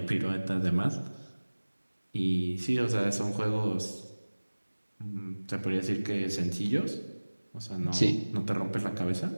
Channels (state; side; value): inverted; both; correlation -1.00